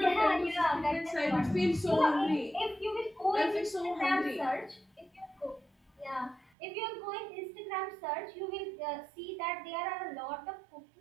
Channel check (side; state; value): left; drops out; at 6.5 s